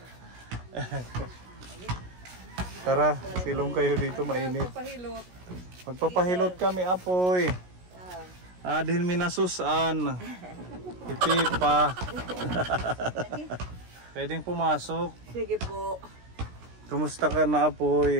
Tara, silong kayo dito, mainit. Magpapahilot. Magpapahilot kami, apoy. Adhin minasusan. Ipipa. Pwedeng pumasok. Sige po. Kumusta ka na,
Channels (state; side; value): late; left; 16 ms